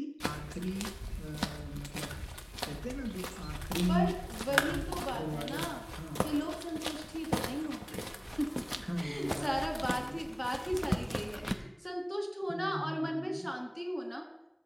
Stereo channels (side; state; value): both; identical; correlation 1.00